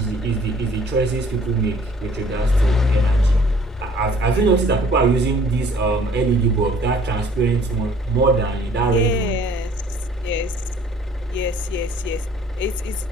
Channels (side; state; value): both; normal; correlation 0.56